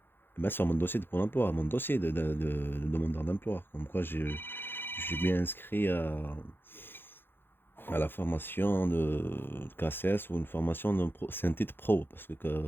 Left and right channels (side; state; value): right; late; 0.10 ms